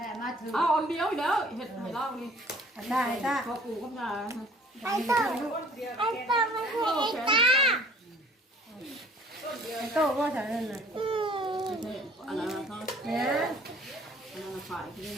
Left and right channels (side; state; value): both; normal; correlation 0.53